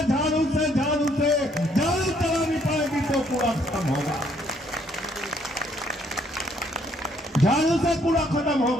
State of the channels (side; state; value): both; normal; correlation 0.67